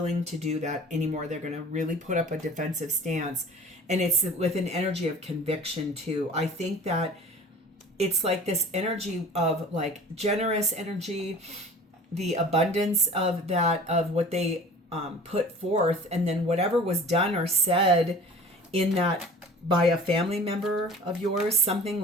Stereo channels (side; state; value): both; normal; correlation 0.42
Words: to do that anymore. They're going to really put up a defensive stance. And it's with an energy of conviction too. I think that it's like this energy of like generous energy, the abundance of that, of what they put forth, and then whatever was done or said in that by a family member of yours, something